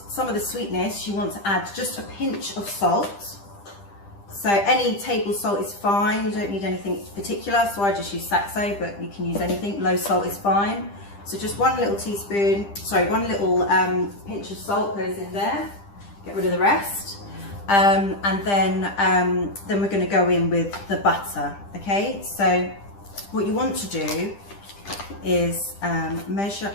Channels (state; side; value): late; right; 10 ms